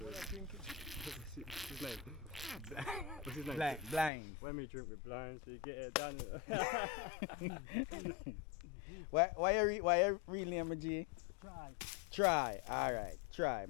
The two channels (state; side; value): drops out; right; at 4.1 s